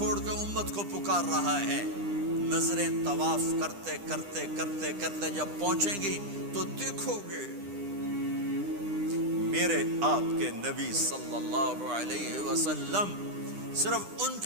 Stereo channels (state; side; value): late; left; 9.9 ms